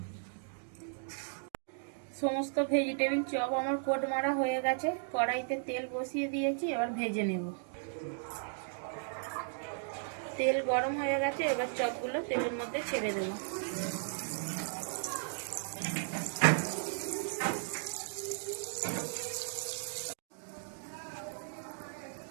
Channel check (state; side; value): silent; left; digital silence